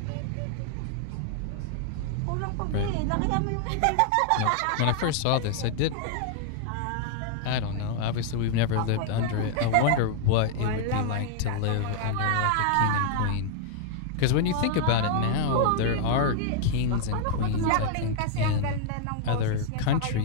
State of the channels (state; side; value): different; both; correlation -0.01